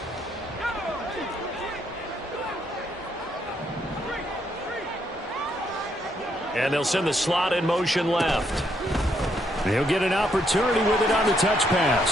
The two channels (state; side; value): normal; both; correlation 0.74